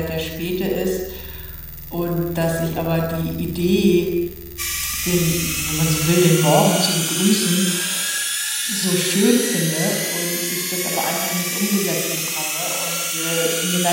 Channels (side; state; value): both; identical; correlation 1.00